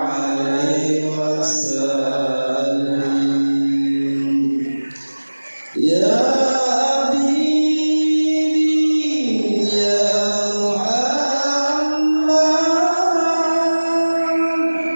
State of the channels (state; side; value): inverted; both; correlation -1.00